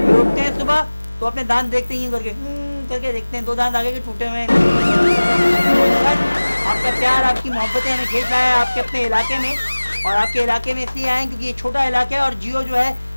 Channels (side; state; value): both; inverted; correlation -1.00